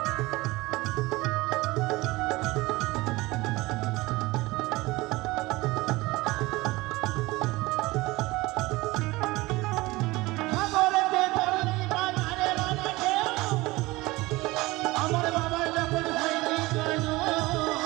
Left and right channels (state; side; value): quieter; left; 21.0 dB